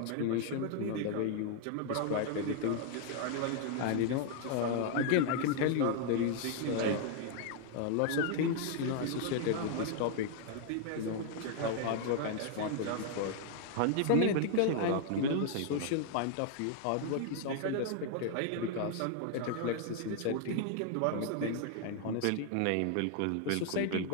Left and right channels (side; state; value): both; different; correlation 0.00